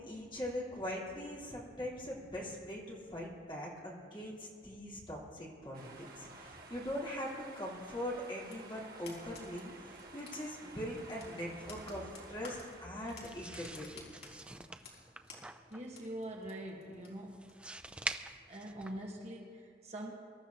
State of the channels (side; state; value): both; normal; correlation 0.53